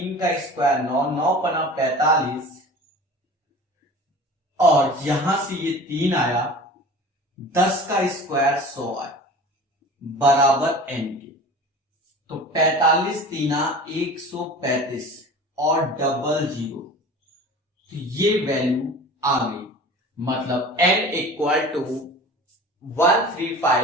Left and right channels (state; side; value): normal; both; correlation 0.39